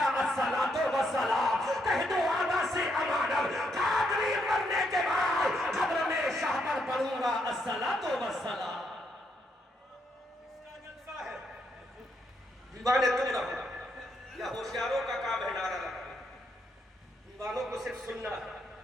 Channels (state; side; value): normal; both; correlation 0.77